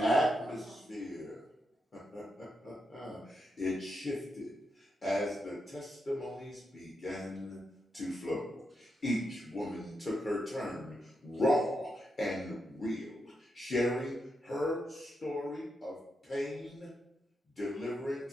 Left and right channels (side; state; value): both; normal; correlation 0.84